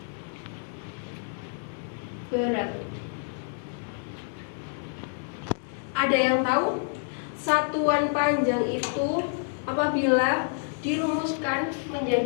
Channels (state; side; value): silent; right; 59 dB below the other